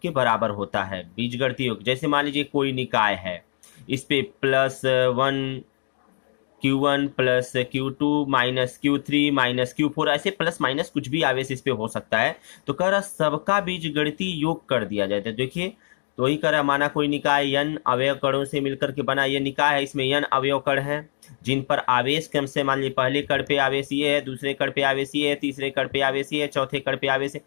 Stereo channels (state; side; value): silent; right; digital silence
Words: के बराबर होता है। बीजगणितीय योग, जैसे मान लीजिए कोई निकाय है, इस पे +1 Q1 plus Q2 minus Q3 minus Q4, ऐसे प्लस माइनस कुछ भी आवेश इस पे हो सकता है। तो कह रहा सबका बीजगणितीय योग कर दिया जाए। तो देखिए, तो वही कह रहा, माना कोई निकाय n अवयव कणों से मिलकर के बना ये निकाय है, इसमें n अवयव कण हैं जिन पर आवेश क्रम से, मान लीजिए पहले कण पे आवेश ये है, दूसरे कण पे आवेश ये है, तीसरे कण पे आवेश ये है, चौथे कण पे आवेश है।